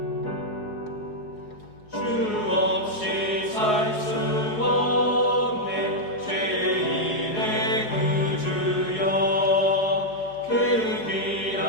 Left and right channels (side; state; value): right; late; 4.7 ms